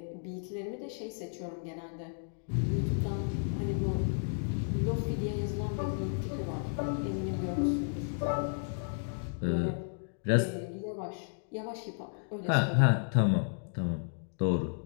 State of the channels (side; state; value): right; silent; digital silence